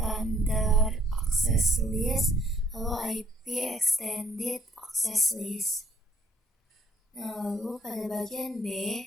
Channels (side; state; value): both; normal; correlation 0.63